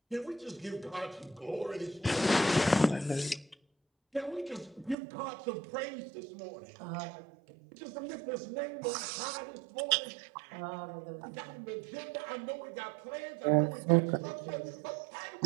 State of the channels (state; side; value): drops out; left; at 5.0 s